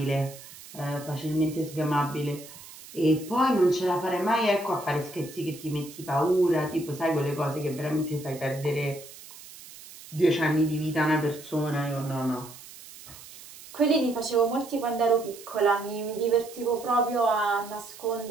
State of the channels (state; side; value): noise; right; hiss, 17 dB below the sound